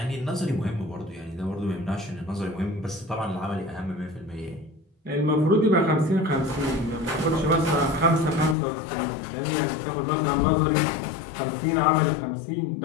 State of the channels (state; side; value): drops out; right; at 8.6 s